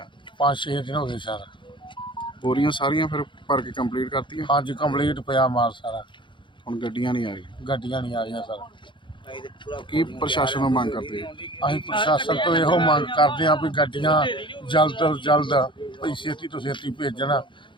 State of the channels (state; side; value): late; right; 0.23 ms